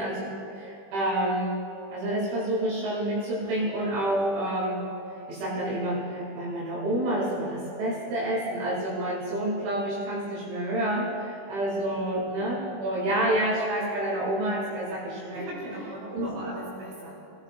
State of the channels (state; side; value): late; left; 20 ms